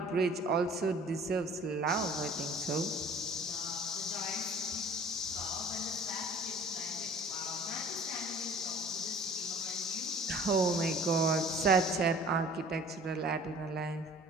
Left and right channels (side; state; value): both; normal; correlation 0.48